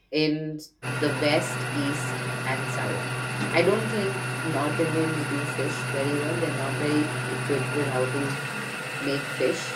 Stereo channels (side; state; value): both; identical; correlation 1.00